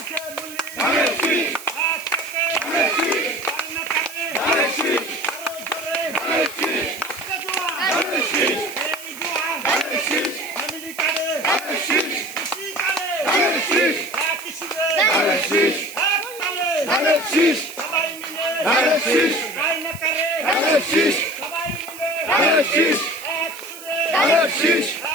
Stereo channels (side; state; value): right; noise; hiss, 15 dB below the sound